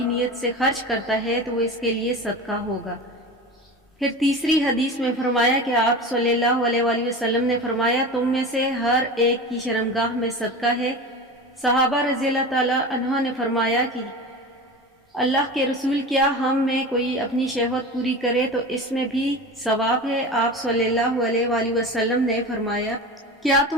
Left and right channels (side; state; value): both; normal; correlation 0.30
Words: نیت سے خرچ کرتا ہے تو وہ اس کے لیے صدقہ ہوگا۔ پھر تیسری حدیث میں فرمایا کہ آپ صلی اللہ علیہ وآلہ وسلم نے فرمایا تم میں سے ہر ایک کی شرمگاہ میں صدقہ ہے۔ صحابہ رضی اللہ تعالیٰ عنہ نے فرمایا کہ اللہ کے رسول، کیا ہم میں کوئی اپنی شہوت پوری کرے تو اس میں بھی ثواب ہے؟ آپ صلی اللہ علیہ وآلہ وسلم نے فرمایا کیا